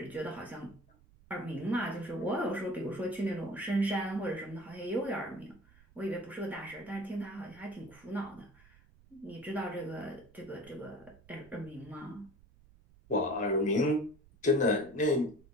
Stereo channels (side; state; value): right; noise; rumble, 25 dB below the sound